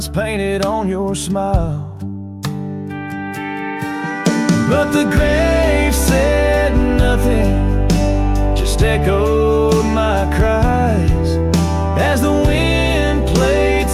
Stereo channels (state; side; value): identical; both; correlation 1.00